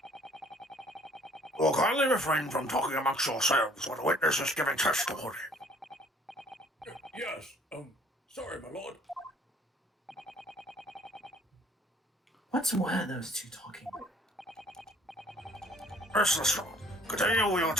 Well, kindly refrain from talking amongst yourselves when a witness is giving testimony. Yes, sorry, my lord. What were those two talking about? Mr. Strong, continue with your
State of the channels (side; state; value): both; normal; correlation 0.58